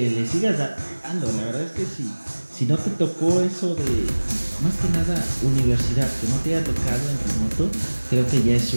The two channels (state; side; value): inverted; both; correlation -1.00